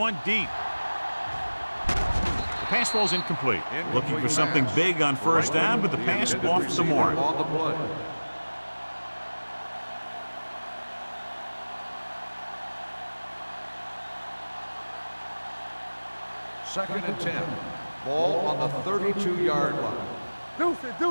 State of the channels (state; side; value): inverted; both; correlation -1.00